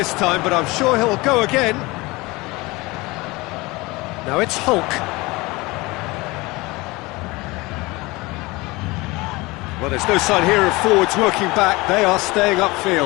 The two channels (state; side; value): quieter; right; 22.8 dB